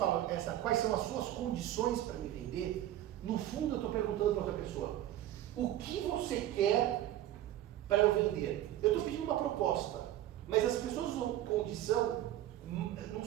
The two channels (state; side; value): quieter; left; 13.2 dB